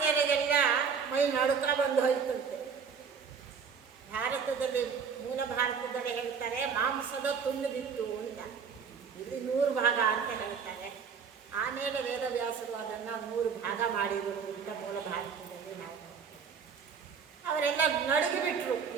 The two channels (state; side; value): quieter; left; 6.2 dB